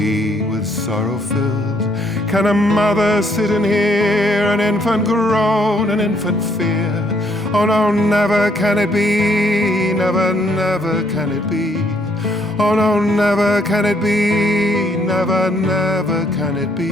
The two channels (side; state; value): both; normal; correlation 0.68